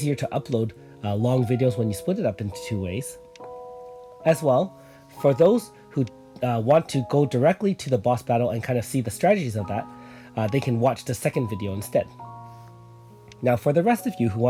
to upload long videos when you split it up into 2 ways. As well, for those who want to go directly to the boss battle and kind of see the strategies of that, they can watch the second video instead. Now, for the rest of you who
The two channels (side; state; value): both; identical; correlation 1.00